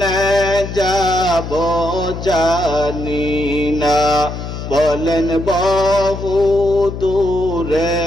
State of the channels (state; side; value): noise; left; hum, 7 dB below the sound